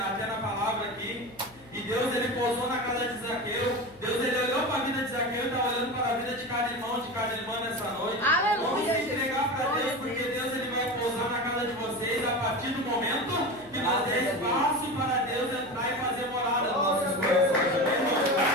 na palavra aqui. E Deus ele pousou na casa de Zaqueu. Deus ele olhou para a vida de Zaqueu e está olhando para a vida de cada irmã nessa noite. Aleluia. Vamos se entregar para Deus, porque Deus ele vai pousar na casa de vocês a partir do momento que nós der espaço para Deus entrar e fazer morada nos nossos corações.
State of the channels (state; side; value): noise; left; hum, 25 dB below the sound